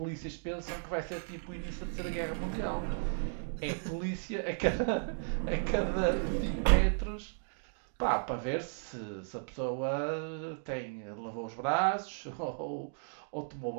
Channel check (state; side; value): silent; left; digital silence